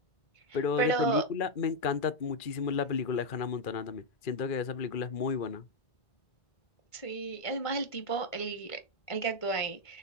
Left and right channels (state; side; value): late; right; 1.5 ms